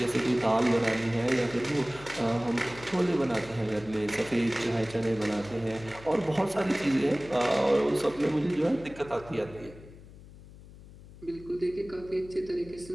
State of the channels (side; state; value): left; noise; hum, 19 dB below the sound